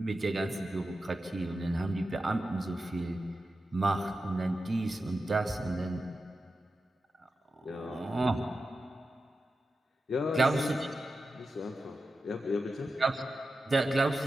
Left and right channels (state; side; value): normal; both; correlation 0.91